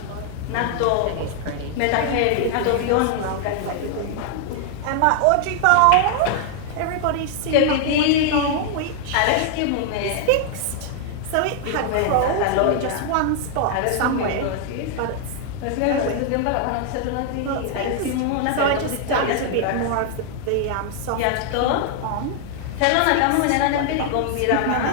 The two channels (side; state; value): both; different; correlation 0.00